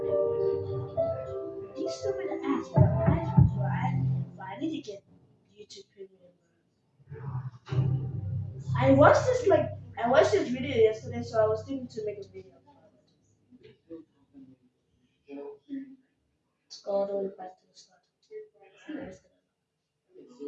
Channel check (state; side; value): identical; both; correlation 1.00